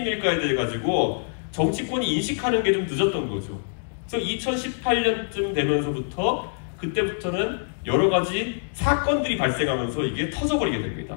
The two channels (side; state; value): right; silent; digital silence